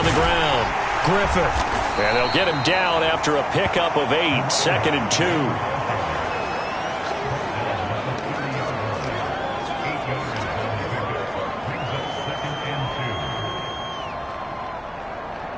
the ground. Griffith. And they'll get him down after a pickup of 8. 2nd and 2.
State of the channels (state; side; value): identical; both; correlation 1.00